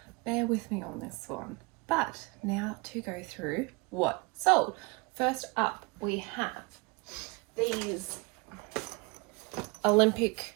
bear with me on this one. But now to go through what sold. First up, we have these Olympic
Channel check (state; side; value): quieter; left; 27.9 dB